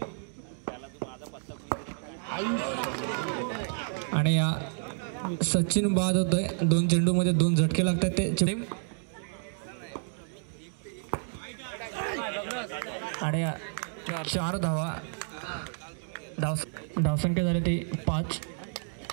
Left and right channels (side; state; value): left; silent; 58 dB below the other